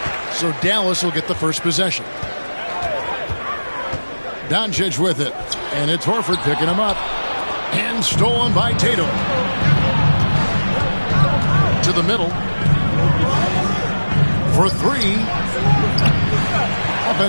So Dallas will get the first possession. Doncic with it. And it's Horford picking him up. And stolen by Tatum. To the middle. For 3.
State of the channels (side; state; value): both; inverted; correlation -1.00